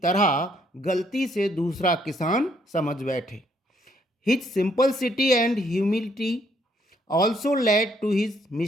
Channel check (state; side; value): normal; both; correlation 0.69